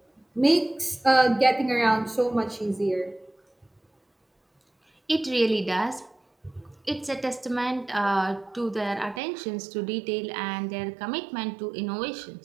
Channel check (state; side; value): drops out; left; at 9.2 s